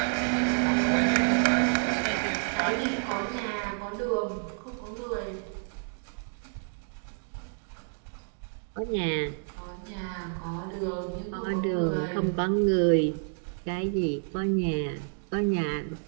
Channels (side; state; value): left; silent; 58 dB below the other